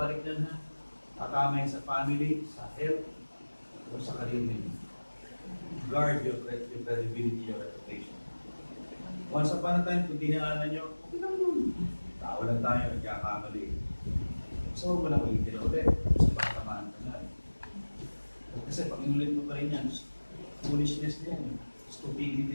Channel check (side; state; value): both; inverted; correlation -1.00